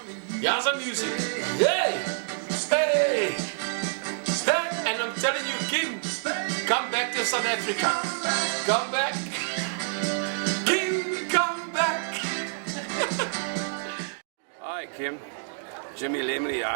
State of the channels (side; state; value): left; silent; digital silence